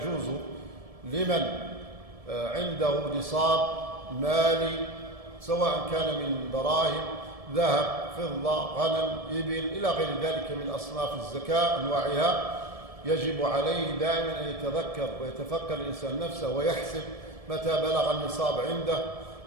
لمن عنده نصاب مالي، سواء كان من دراهم، ذهب، فضة، غنم، إبل، إلى غير ذلك من أصناف الزكاة أنواعها، يجب عليه دائما أن يتذكر ويتفكر الإنسان نفسه ويحسب متى بلغ النصاب عنده،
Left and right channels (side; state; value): left; late; 1.7 ms